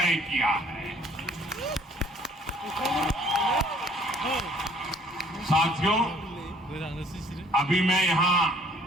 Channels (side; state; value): both; normal; correlation 0.59